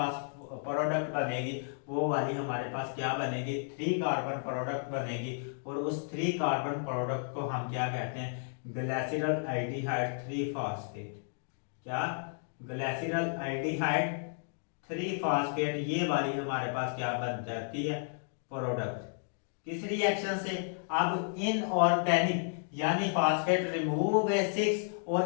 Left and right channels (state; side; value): silent; right; digital silence